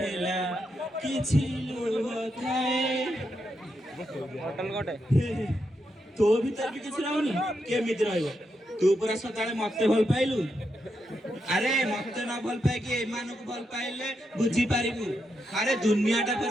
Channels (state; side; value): normal; both; correlation 0.83